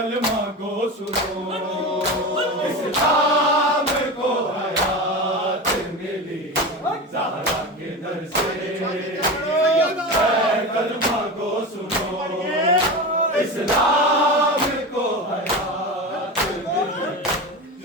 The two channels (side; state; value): both; normal; correlation 0.25